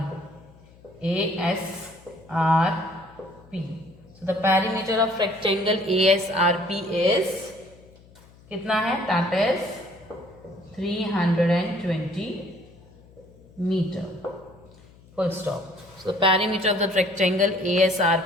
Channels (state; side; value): noise; left; hum, 25 dB below the sound